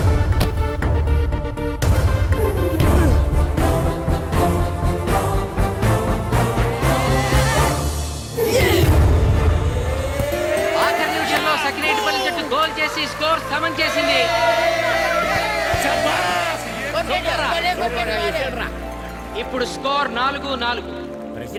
స్కోర్ సమం చేసింది. ఇప్పుడు స్కోర్ 4-4.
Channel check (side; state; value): both; identical; correlation 1.00